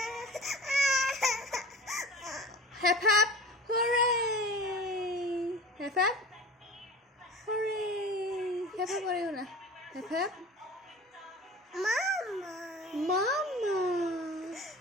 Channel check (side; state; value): both; normal; correlation 0.37